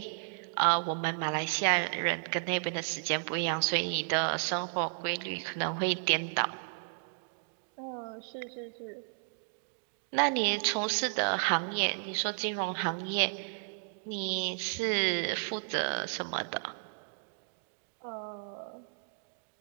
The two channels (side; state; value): left; silent; digital silence